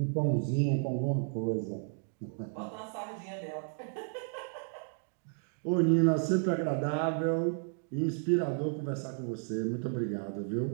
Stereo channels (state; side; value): silent; left; 56 dB below the other